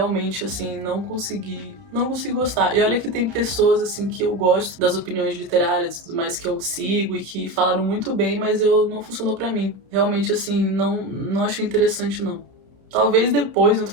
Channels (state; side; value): late; left; 31 ms